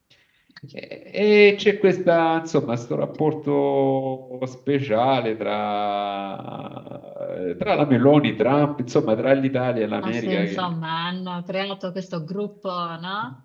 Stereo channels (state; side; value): identical; both; correlation 1.00